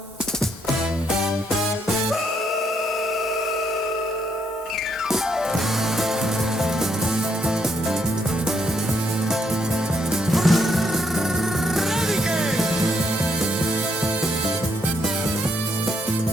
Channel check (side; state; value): both; normal; correlation 0.75